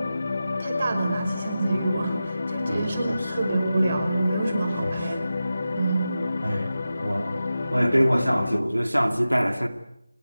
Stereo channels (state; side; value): inverted; both; correlation -0.93